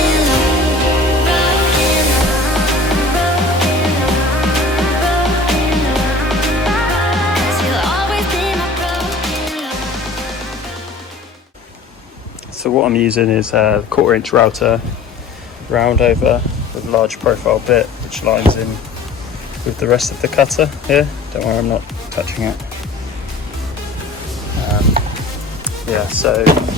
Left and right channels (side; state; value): right; quieter; 3.3 dB